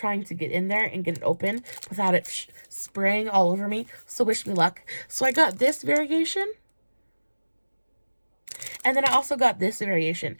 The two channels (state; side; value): inverted; both; correlation -1.00